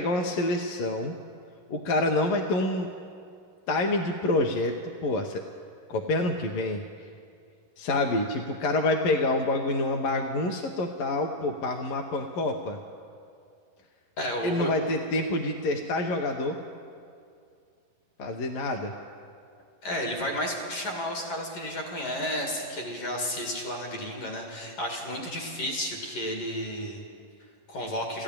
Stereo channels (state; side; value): late; right; 11 ms